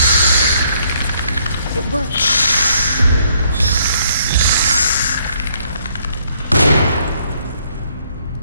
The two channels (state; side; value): inverted; both; correlation -0.68